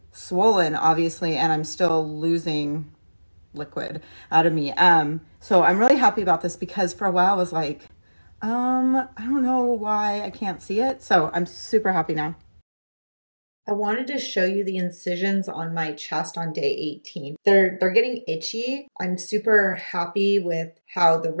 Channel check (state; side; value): inverted; both; correlation -1.00